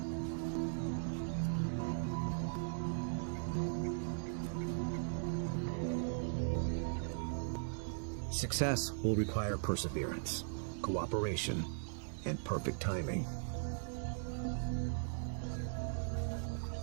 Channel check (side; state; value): left; silent; digital silence